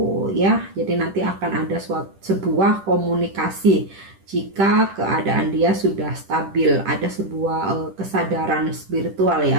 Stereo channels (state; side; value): late; left; 10 ms